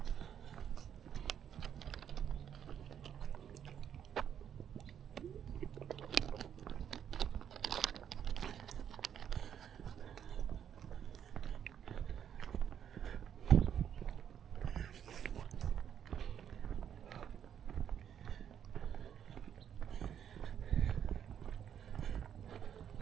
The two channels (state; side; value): quieter; left; 8.9 dB